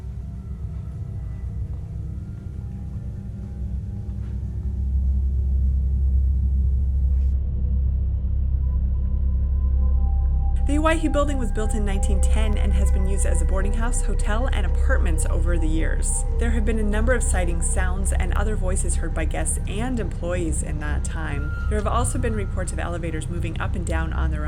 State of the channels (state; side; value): identical; both; correlation 1.00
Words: The Idaho Building was built in 1910 and has been used as a boarding house, hotel, and apartments over the years. There have been a number of sightings, sounds, and other voices heard by guests and employees in that time. There have also been reports of elevators moving up and down on their